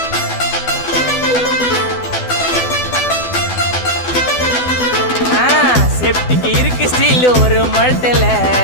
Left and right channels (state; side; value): late; right; 12 ms